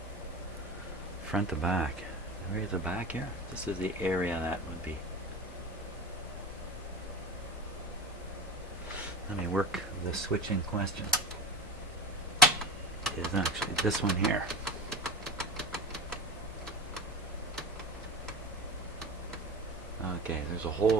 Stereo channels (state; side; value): normal; both; correlation 0.29